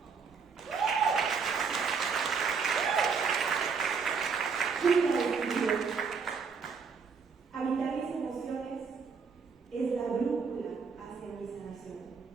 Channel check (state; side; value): quieter; left; 5.5 dB